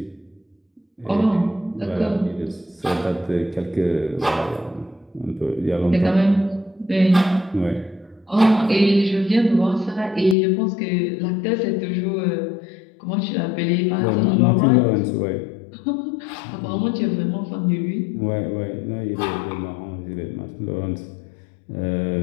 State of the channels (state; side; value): drops out; right; at 10.4 s